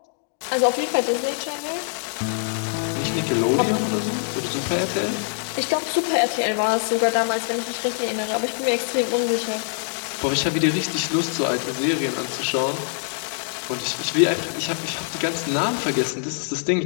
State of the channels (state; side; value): silent; right; digital silence